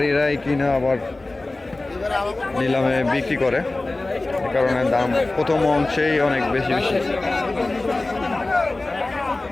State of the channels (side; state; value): right; quieter; 3.0 dB